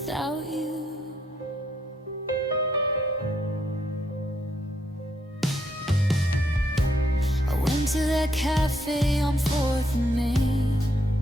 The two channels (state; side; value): normal; both; correlation 0.75